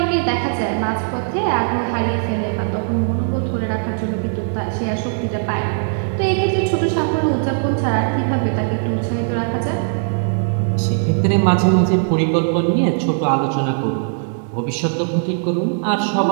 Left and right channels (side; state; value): left; silent; digital silence